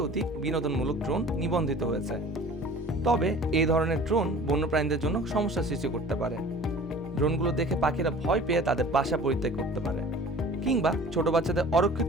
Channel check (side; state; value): both; normal; correlation 0.44